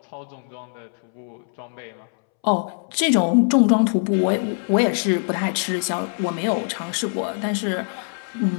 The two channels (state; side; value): silent; right; 64 dB below the other